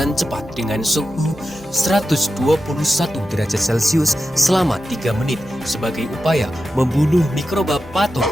cepat dengan suhu 121 derajat Celcius selama 3 menit sebagai upaya membunuh mikroba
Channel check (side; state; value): both; normal; correlation 0.91